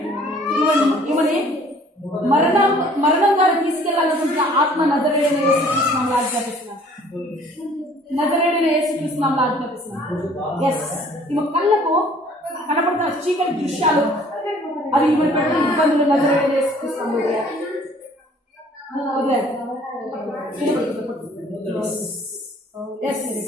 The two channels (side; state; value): both; normal; correlation 0.55